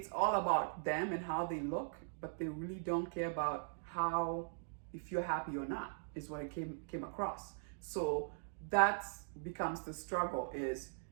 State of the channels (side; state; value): left; silent; digital silence